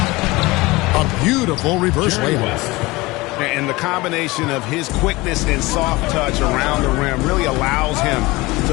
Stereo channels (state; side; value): quieter; right; 21.7 dB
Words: A beautiful reverse layup. And the combination of his quickness and soft touch around the rim really allows him